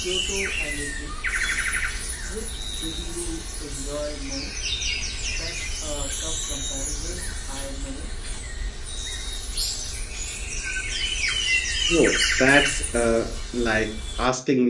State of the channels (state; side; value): identical; both; correlation 1.00